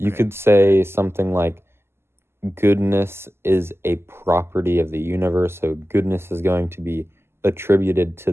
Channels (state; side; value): late; left; 0.12 ms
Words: Okay. could say something like goodness is a property of the universe, so goodness is going to be attributed to